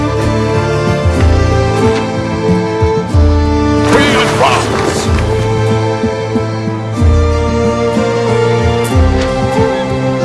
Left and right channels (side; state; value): both; identical; correlation 1.00